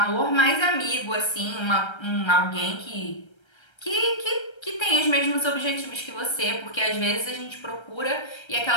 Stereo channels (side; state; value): right; late; 1.3 ms